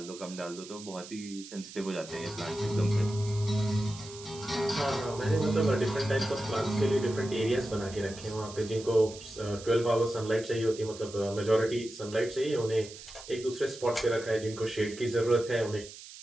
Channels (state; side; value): noise; right; hiss, 15 dB below the sound